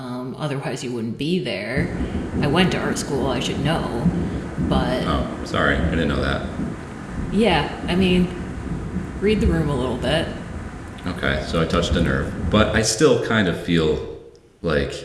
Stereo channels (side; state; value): both; identical; correlation 1.00